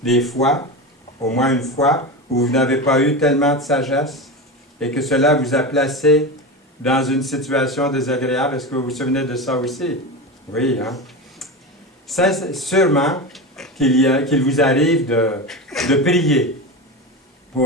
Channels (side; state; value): both; normal; correlation 0.23